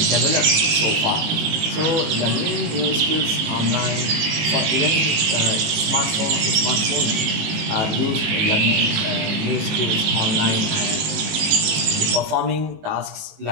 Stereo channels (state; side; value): late; left; 19 ms